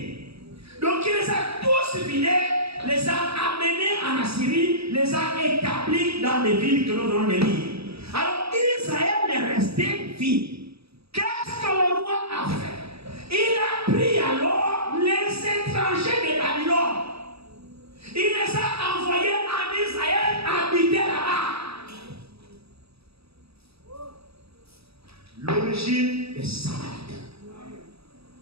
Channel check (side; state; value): left; late; 0.77 ms